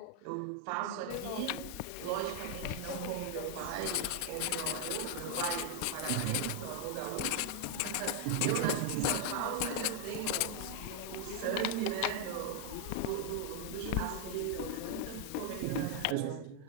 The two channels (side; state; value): both; different; correlation 0.00